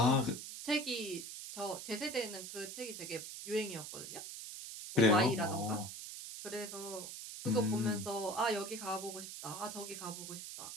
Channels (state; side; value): noise; right; hiss, 9 dB below the sound